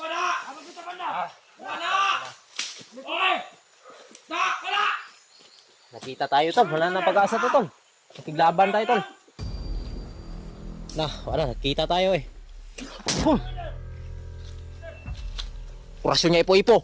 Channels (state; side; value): identical; both; correlation 1.00